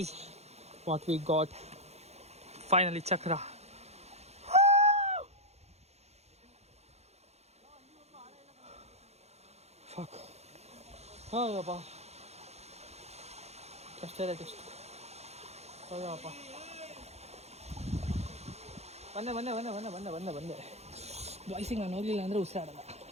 what we got. Finally, Chakra. Fuck. Oh, yapa. Just tell it. Oh, yapa. ಬಂದೆ ಬಾಯ್ಸಿಗೆ ನಾನು ಹೋಗ್ಲಿಲ್ಲ ಅಂದರೆ ಉಸಿರಾಡಲ್ಲ.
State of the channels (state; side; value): late; left; 0.31 ms